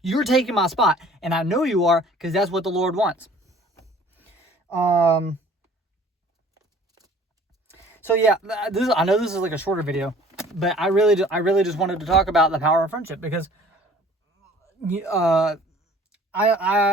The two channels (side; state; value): both; normal; correlation 0.51